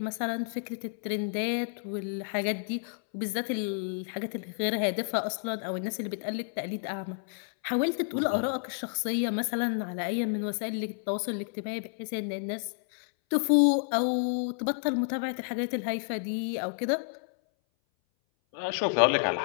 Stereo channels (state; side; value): silent; right; 58 dB below the other